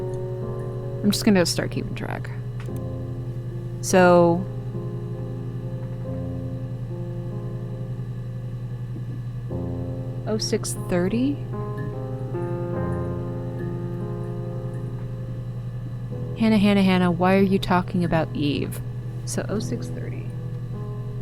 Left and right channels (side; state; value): both; identical; correlation 1.00